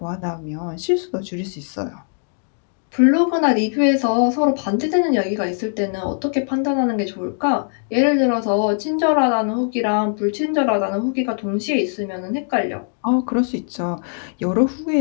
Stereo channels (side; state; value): right; silent; 64 dB below the other